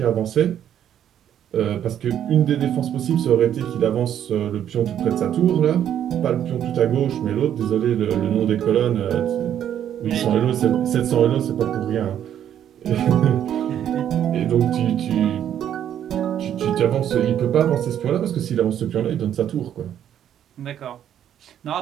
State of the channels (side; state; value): left; quieter; 10.1 dB